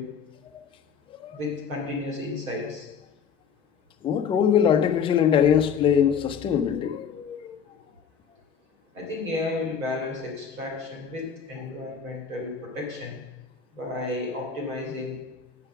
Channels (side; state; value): right; quieter; 7.0 dB